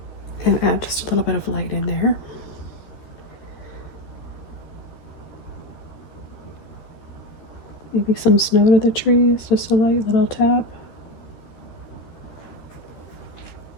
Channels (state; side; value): late; right; 13 ms